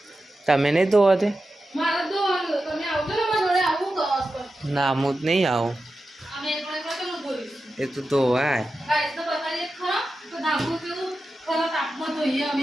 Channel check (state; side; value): normal; both; correlation 0.91